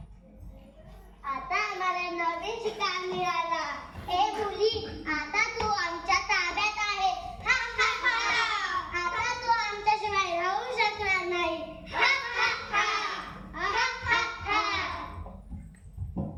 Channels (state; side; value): identical; both; correlation 1.00